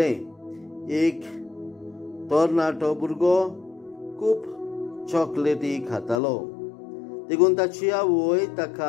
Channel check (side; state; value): right; drops out; at 6.2 s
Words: एक तरणाटो भुरगो खूब चॉकलेटी खातालो. देखून ताची आवय